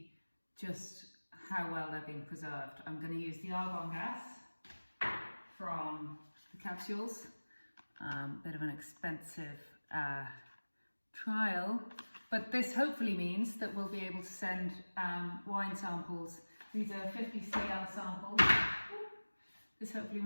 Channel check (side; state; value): both; inverted; correlation -1.00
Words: just how well they're being preserved. I'm going to use the argon gas from the capsules, bit of an expensive trial, but this hopefully means that we'll be able to send wine samples. These are 50 CL samples. This hopefully